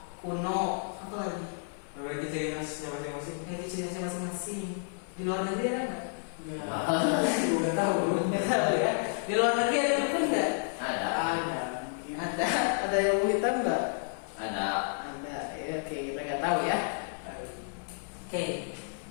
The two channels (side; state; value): right; silent; 57 dB below the other